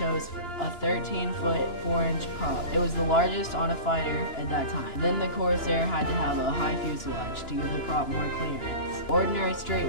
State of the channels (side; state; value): right; late; 2.9 ms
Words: a 13-foot 4-inch prop. It was the largest on a fighter at that time. Then the Corsair had to have a high fuselage to give the prop more clearance. Ordinary straight